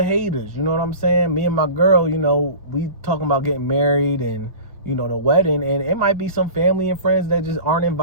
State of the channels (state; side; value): inverted; both; correlation -0.37